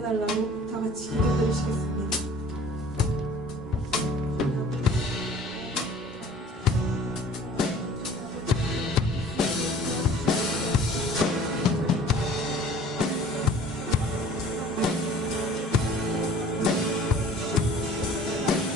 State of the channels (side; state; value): both; normal; correlation 0.49